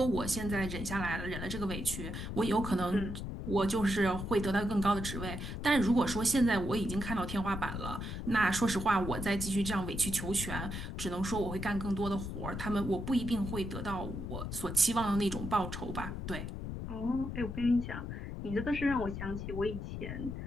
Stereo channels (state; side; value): noise; left; rumble, 6 dB below the sound